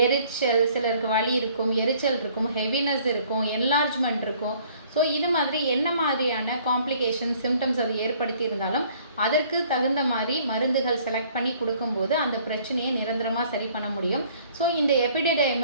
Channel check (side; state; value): both; inverted; correlation -0.58